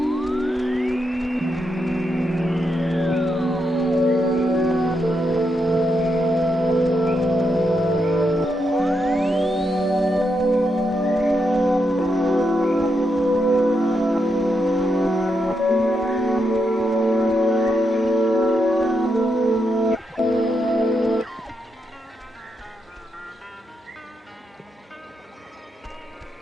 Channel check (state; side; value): normal; both; correlation 0.83